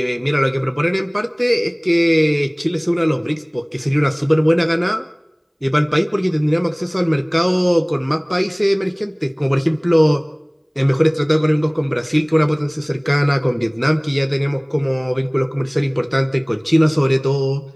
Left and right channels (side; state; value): both; identical; correlation 1.00